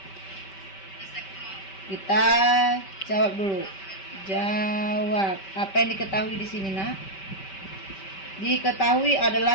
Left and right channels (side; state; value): right; late; 5.2 ms